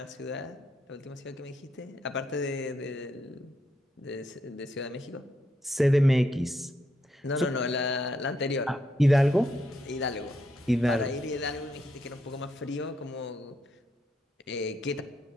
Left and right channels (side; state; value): both; normal; correlation 0.78